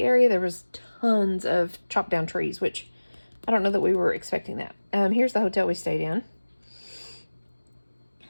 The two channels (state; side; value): inverted; both; correlation -1.00